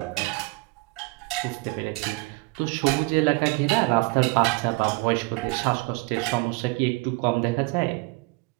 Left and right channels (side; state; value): left; quieter; 25.4 dB